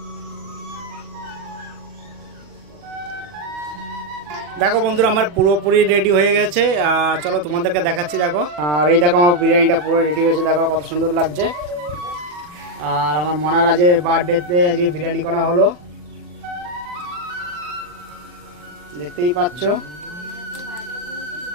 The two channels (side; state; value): left; late; 40 ms